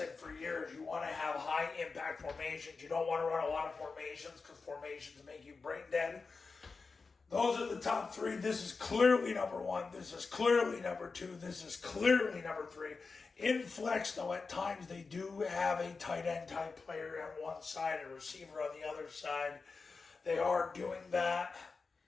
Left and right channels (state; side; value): quieter; right; 4.4 dB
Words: for years, you want to have high impact formations. You don't want to run a lot of formations because formations make you brain dead. Those are the top three. This is clearly number one. This is clearly number two. This is clearly number three. In flex, though, at times they do have a tight end type player on one side, a receiver on the other side. They are doing that